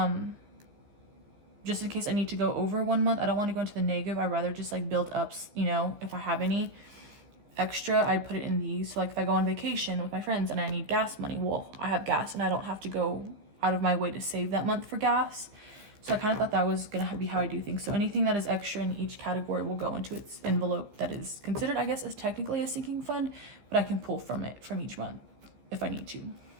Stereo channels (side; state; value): left; late; 15 ms